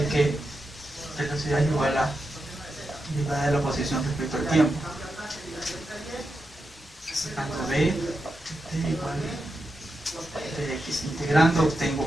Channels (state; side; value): normal; both; correlation 0.88